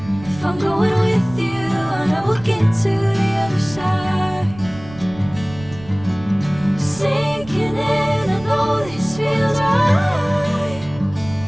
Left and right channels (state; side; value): noise; right; rumble, 17 dB below the sound